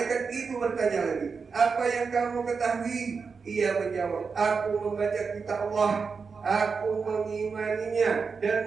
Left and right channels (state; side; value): quieter; left; 5.2 dB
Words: itu bertanya lagi, apa yang kamu ketahui? Ia menjawab, aku membaca kitab Allah, aku mengimaninya